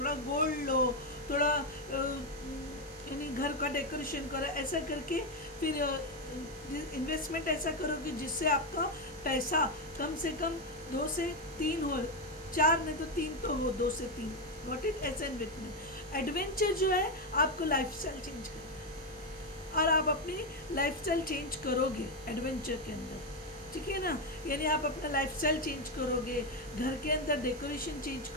गोल्ड लो, थोड़ा यानी घर का डेकोरेशन करो, ऐसा करके फिर इन्वेस्टमेंट ऐसा करो कि जिससे आपका पैसा कम से कम 2 से 3 हो, 4 नहीं तो 3 तो हो, 2 से 3, व्हाट इज ऐसा इन्वेस्टमेंट। एडवेंचर जो है आपको लाइफस्टाइल चेंज करना, और आप अपनी लाइफस्टाइल चेंज करोगे एडवेंचर के अंदर, ठीक है ना, यानी आप अपना लाइफस्टाइल चेंज करोगे, घर के अंदर डेकोरेशन चेंज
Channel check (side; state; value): both; normal; correlation 0.07